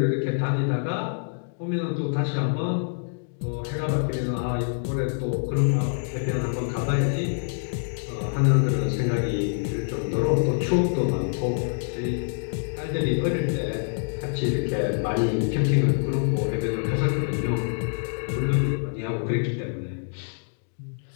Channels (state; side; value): silent; right; digital silence